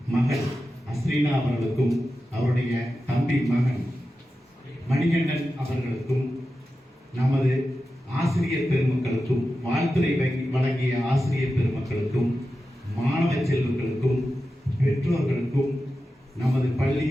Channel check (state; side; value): normal; both; correlation 0.92